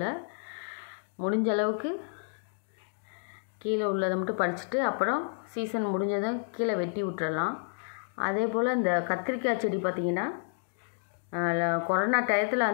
முடிஞ்ச அளவுக்கு கீழே உள்ளதை மட்டும் பறிச்சுட்டு அப்புறம் சீசன் முடிஞ்சதும் கீழே வெட்டி விட்டுறலாம். அதே போல் இந்த கத்திரிக்காய் செடி பார்த்திங்கன்னா கொரோனா டயத்தில்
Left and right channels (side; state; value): right; silent; digital silence